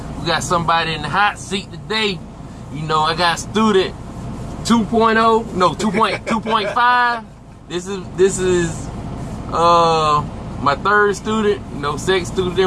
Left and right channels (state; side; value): identical; both; correlation 1.00